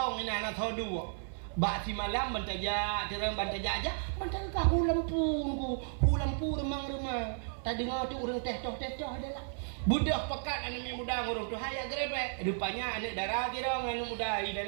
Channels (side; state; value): left; silent; 55 dB below the other